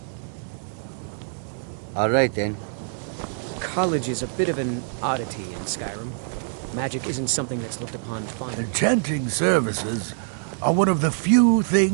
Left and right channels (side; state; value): left; silent; 57 dB below the other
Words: All right, then. College is a bit of an oddity in Skyrim. Magic isn't something that's looked upon fondly. Enchanting services are one of the few